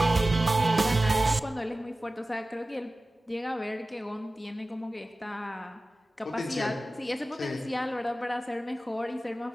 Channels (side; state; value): both; normal; correlation 0.96